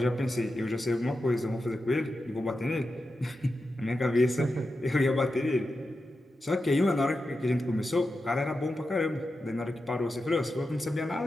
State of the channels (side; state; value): both; normal; correlation 0.90